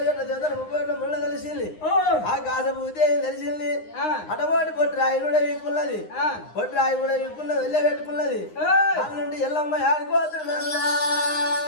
దేవతలు 37 ముళ్ళ కలిసింది ఆ కాసపూతే తెలిసింది అటవాటి బొడ్రాయి కూడా వీక్కున్నది బొడ్రాయి కూడా వీక్కున్నది వెళ్ళే పెట్టుకున్నది దాని నుండి ఎల్లమ్మ ఆడిపోతున్నా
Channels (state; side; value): late; right; 9.7 ms